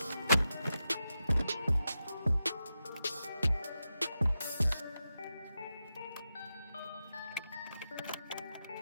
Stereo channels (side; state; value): both; inverted; correlation -0.89